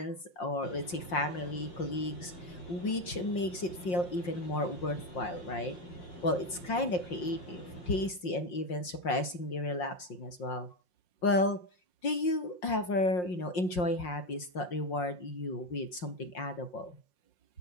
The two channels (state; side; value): late; right; 5.6 ms